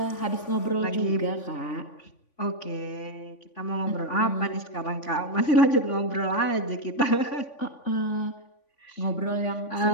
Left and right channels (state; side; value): late; right; 3.5 ms